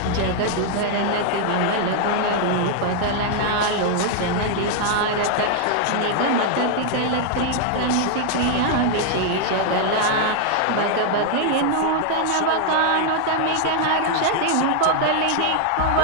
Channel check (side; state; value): both; different; correlation 0.00